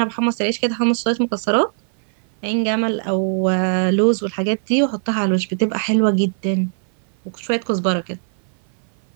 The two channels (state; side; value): silent; left; 57 dB below the other